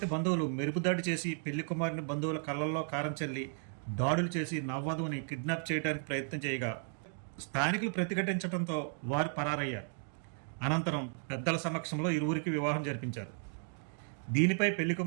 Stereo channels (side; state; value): left; silent; 55 dB below the other